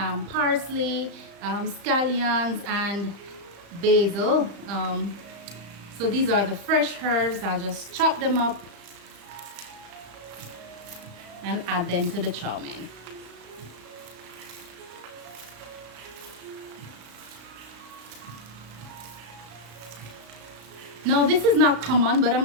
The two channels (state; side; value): late; left; 35 ms